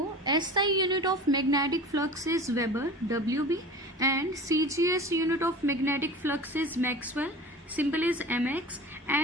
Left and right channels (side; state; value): both; normal; correlation 0.37